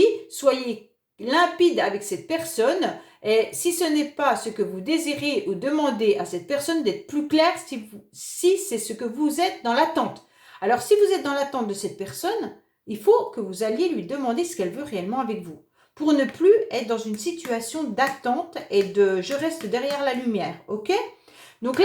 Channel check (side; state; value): both; identical; correlation 1.00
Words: soyez limpide avec cette personne. Et si ce n'est pas ce que vous désirez ou demandez à cette personne d'être plus clair si c'est ce que vous êtes dans l'attente. Alors si vous êtes dans l'attente de cette personne, il faut que vous alliez lui demander ce qu'elle veut réellement avec vous. Pour ne plus être dans une situation d'attente et de je reste derrière la lumière, ok? Donc